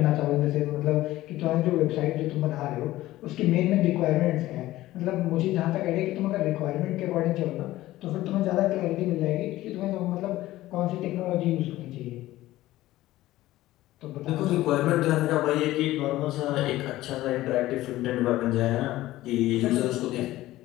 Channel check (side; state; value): right; quieter; 16.2 dB